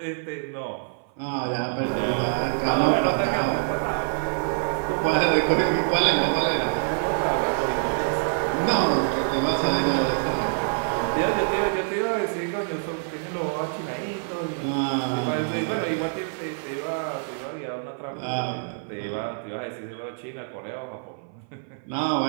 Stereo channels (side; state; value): left; silent; 56 dB below the other